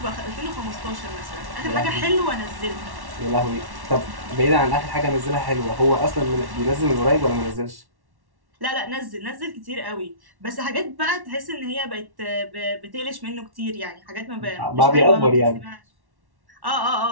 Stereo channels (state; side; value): late; left; 1.1 ms